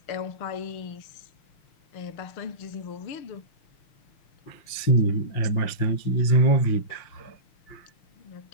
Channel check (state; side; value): late; right; 5.8 ms